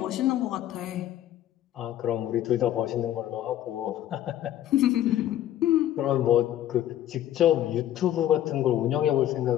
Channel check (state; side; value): quieter; right; 12.3 dB